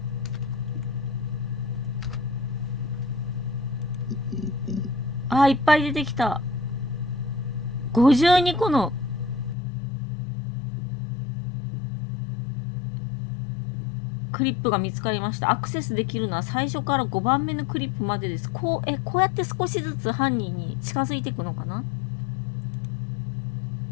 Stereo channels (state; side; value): drops out; right; at 9.6 s